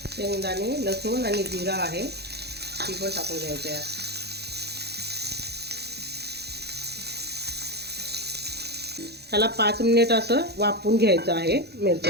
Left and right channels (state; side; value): late; left; 0.48 ms